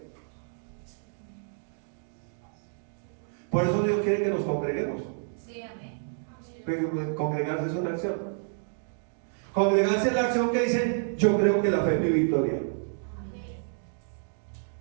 Por eso Dios quiere que nos congreguemos. Sí, amén. Pero congregarse es una acción. Congregarse es la acción que dice: yo creo que la fe es mi victoria.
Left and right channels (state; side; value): silent; left; digital silence